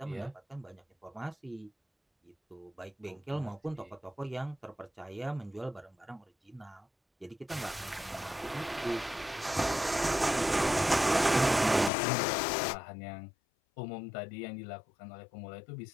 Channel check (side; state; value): right; drops out; at 11.9 s